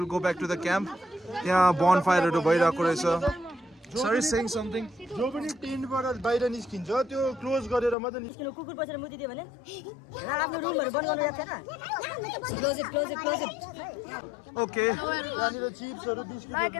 go back to the camp. Yeah, bonfire to bhayirako rahecha. Sir is saying something. जो पनि टेन्टबाट बाहिर निस्किन्छ त्यो close गरेर मात्र किन कुकुर बसेर मुति दियो भने आफ्नो रुमहरु बन्द गर्नु याद छैन. Close it. Okay. त्यहाँनिर चिप्सहरु biscuit Like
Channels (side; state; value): right; drops out; at 8.0 s